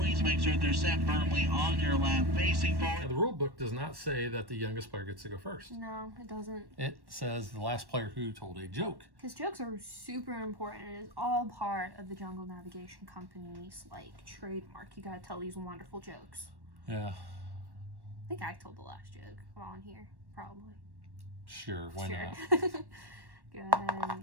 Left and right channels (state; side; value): late; left; 1.1 ms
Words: make sure they're sat firmly on your lap, facing Now, forward. the rule book does not say that the youngest player gets to go first. No, it doesn't. It says the last player who told a joke. Because jokes are super important. It is all part of the Jungle Navigation Company's trademark. You gotta tell these wonderful jokes. Yeah, I think I told the last joke while I'm here, probably. sure, why not? Go ahead